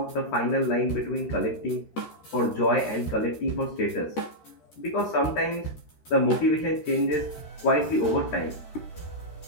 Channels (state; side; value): late; right; 13 ms